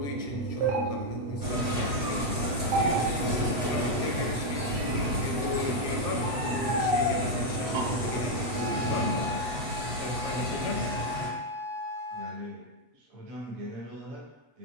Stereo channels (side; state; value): left; late; 8.2 ms